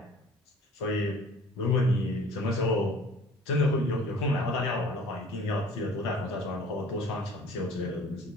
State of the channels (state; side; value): normal; both; correlation 0.49